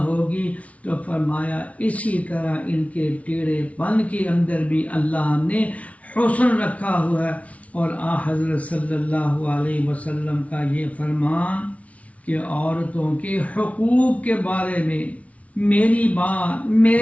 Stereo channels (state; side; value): late; right; 0.066 ms